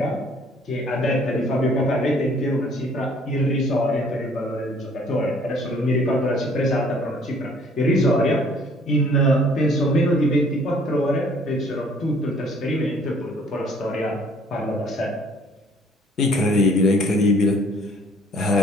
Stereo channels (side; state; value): both; normal; correlation 0.58